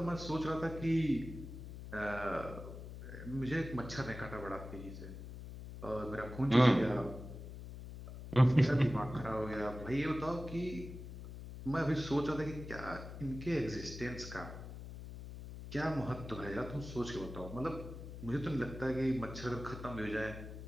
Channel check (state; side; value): noise; left; hum, 11 dB below the sound